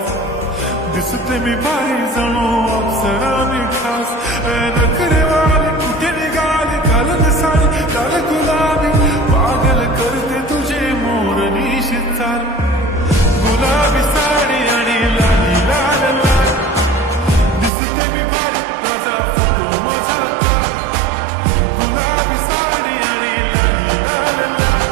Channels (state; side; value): drops out; left; at 17.7 s